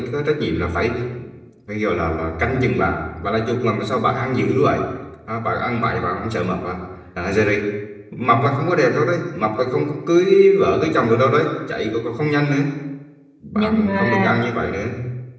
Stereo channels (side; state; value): both; identical; correlation 1.00